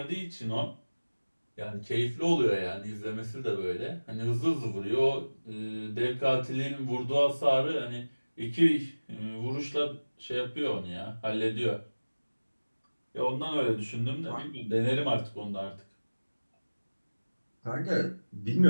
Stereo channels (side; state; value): both; inverted; correlation -1.00